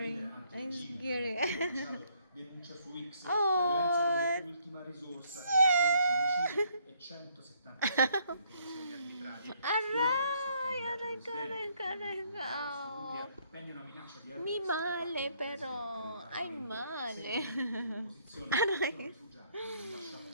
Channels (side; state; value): both; inverted; correlation -0.67